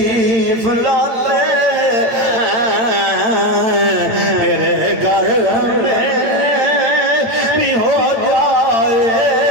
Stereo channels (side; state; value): left; late; 8.9 ms